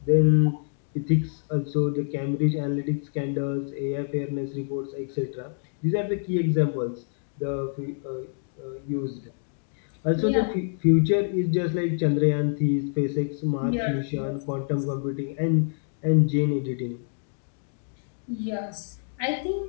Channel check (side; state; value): right; silent; digital silence